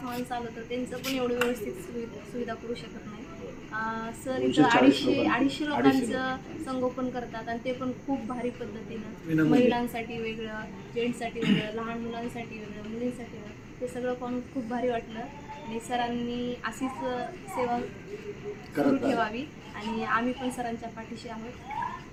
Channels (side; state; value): both; identical; correlation 1.00